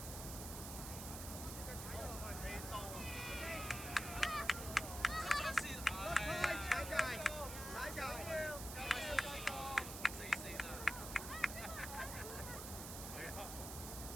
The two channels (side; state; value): right; noise; hiss, 7 dB below the sound